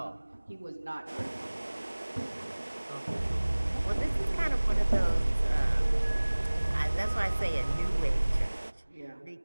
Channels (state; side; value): inverted; both; correlation -1.00